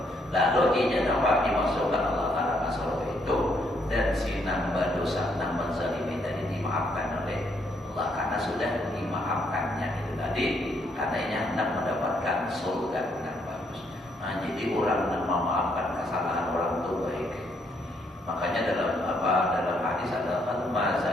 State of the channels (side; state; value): both; normal; correlation 0.72